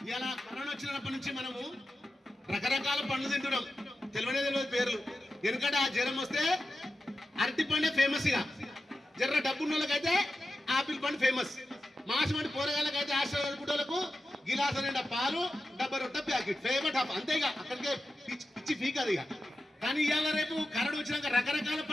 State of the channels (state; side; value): normal; both; correlation 0.92